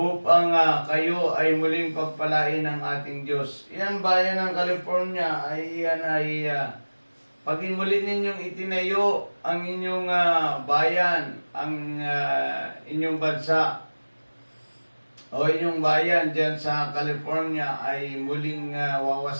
kayo ay muling pagpalain ng ating Diyos. Yan bayan ng California ay paging muli ninyong itinayo ang inyong bayan, ang inyong bansa o inyong bayan dyan sa California ay muling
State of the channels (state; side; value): inverted; both; correlation -1.00